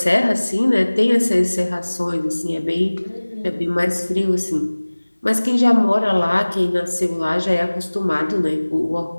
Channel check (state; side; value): inverted; both; correlation -1.00